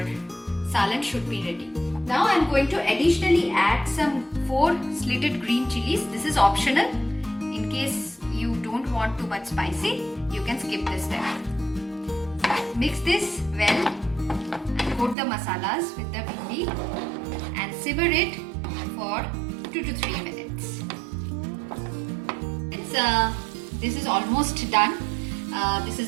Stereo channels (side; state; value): left; drops out; at 15.2 s